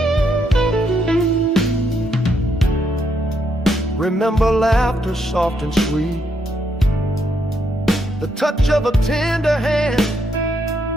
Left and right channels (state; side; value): normal; both; correlation 0.76